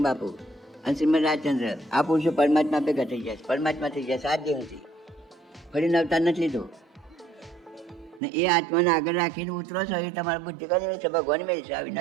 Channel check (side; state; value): left; drops out; at 8.2 s